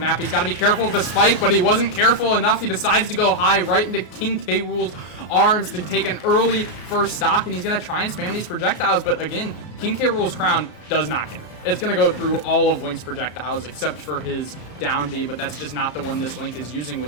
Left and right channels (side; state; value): right; late; 33 ms